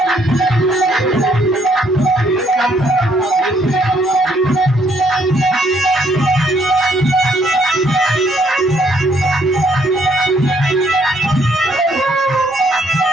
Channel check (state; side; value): normal; both; correlation 0.68